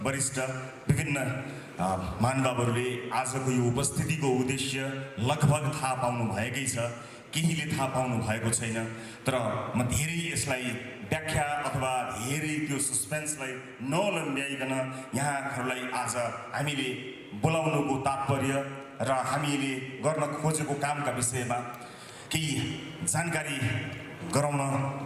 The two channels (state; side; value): identical; both; correlation 1.00